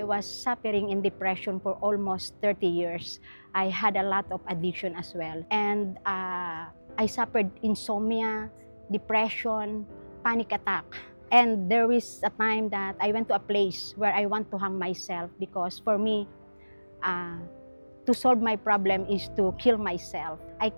was suffering in depression for almost 30 years. I had a lot of addiction as well. And I suffered insomnia, depression, panic attack. And there is a time that I went to a place where I want to hang myself because for me, to solve my problem is to kill myself. I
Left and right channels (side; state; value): both; inverted; correlation -1.00